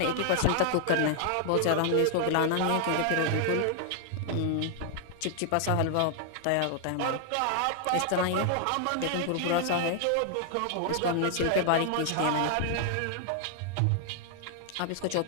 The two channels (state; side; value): different; both; correlation 0.00